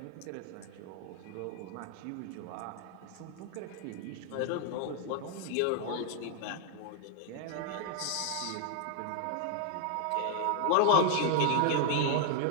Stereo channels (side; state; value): both; different; correlation 0.00